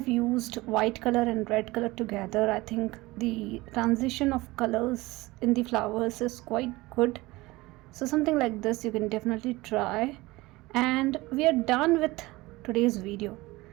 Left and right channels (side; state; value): left; quieter; 20.6 dB